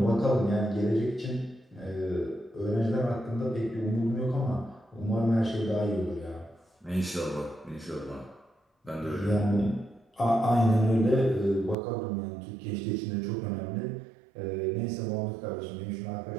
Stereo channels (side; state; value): left; drops out; at 11.8 s